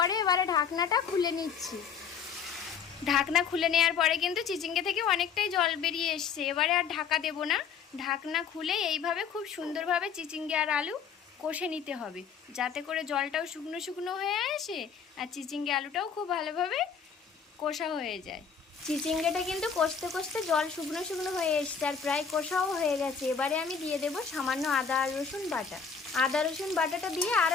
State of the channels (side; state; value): right; quieter; 6.6 dB